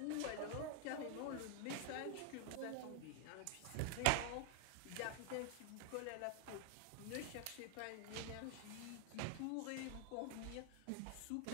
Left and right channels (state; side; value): different; both; correlation 0.00